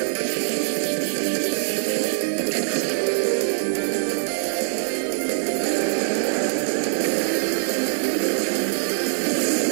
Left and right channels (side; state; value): left; silent; 61 dB below the other